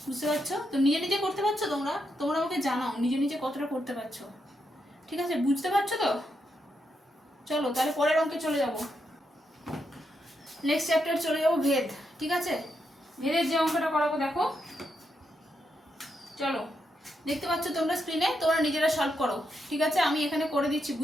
বুঝতে পারছো তো? নিজে নিজে করতে পারছো তোমরা? তোমরা আমাকে জানাও নিজে নিজে কতটা করতে পারছো। ঠিক আছে, বুঝতে পারছো তো? চলো তাহলে পরের অঙ্কে চলে যাব। নেক্সট চ্যাপ্টার চলে যাবো ভেদ। ঠিক আছে, ভেদের যে অঙ্কটা করাবো দেখো, চলো দেখতে পাচ্ছ তোমরা স্ক্রিনে, তোমরা নিজেরা সলভ করো। ঠিক আছে, আমি এখানে করে দিচ্ছি,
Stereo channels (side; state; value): both; normal; correlation 0.82